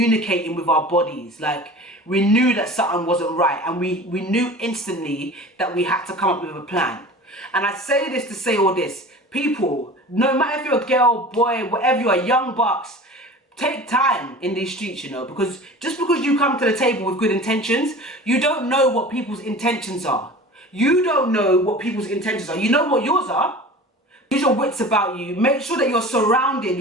with our bodies. Like, we knew that something wasn't right, and we knew instantly that we had to come up with a plan. And I say this to say all this. People, no matter if you're a girl, boy, whatever you are, young bucks, take time in these streets, you know, because just because you come to the table with good intentions, you don't know what people's intentions are. You don't know what people's intentions are. You know what yours are. Use your wits about you. Make sure that your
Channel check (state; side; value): normal; both; correlation 0.39